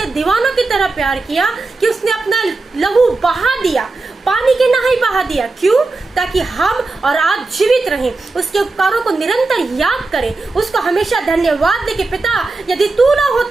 दीवानों की तरह प्यार किया कि उसने अपना लहू बहा दिया, पानी के नहाई बहा दिया। क्यों? ताकि हम और आप जीवित रहें, उसके उपकारों को निरंतर याद करें, उसको हमेशा धन्यवाद दे कि पिता यदि तू ना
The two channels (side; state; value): left; quieter; 3.5 dB